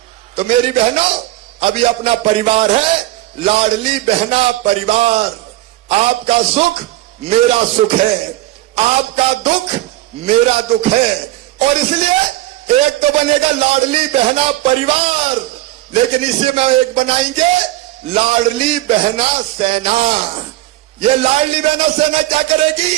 तो मेरी बहनों, अभी अपना परिवार है, लाडली बहना परिवार। आपका सुख मेरा सुख है, आपका दुख मेरा दुख है, और इसलिए एक तो बनेगा लाडली बहना परिवार, लेकिन इसी में एक बनाएंगे लाडली बहना सेना। ये लाडली बहना सेना क्या करेगी?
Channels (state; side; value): quieter; left; 16.5 dB